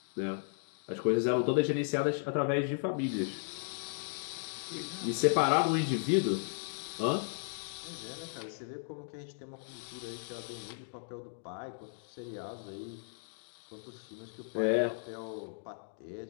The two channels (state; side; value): silent; right; digital silence